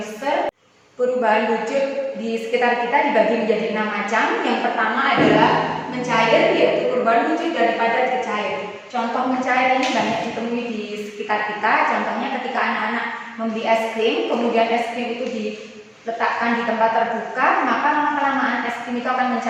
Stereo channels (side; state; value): both; identical; correlation 1.00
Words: Perubahan wujud di sekitar kita dibagi menjadi 6 macam. Yang pertama adalah mencair, yaitu perubahan wujud dari padat ke cair. Contoh mencair ini banyak ditemui di sekitar kita. Contohnya ketika anak-anak membeli es krim, kemudian es krim itu diletakkan di tempat terbuka, maka lama-kelamaan es krim itu akan